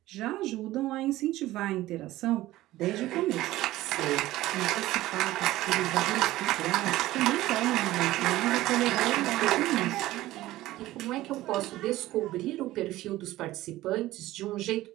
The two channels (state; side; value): quieter; left; 16.3 dB